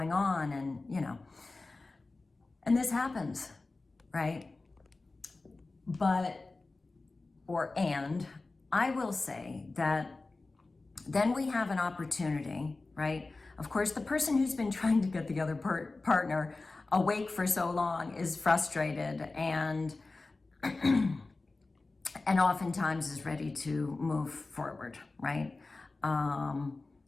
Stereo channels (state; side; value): quieter; right; 3.4 dB